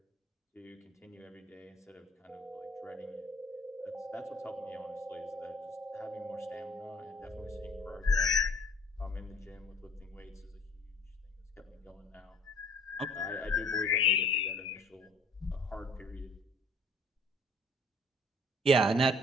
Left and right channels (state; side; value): normal; both; correlation 0.54